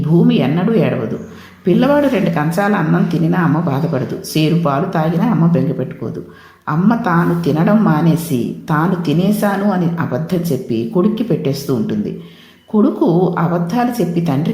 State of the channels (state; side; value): identical; both; correlation 1.00